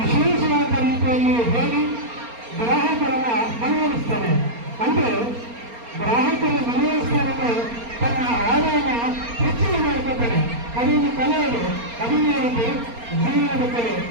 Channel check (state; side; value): late; left; 4.3 ms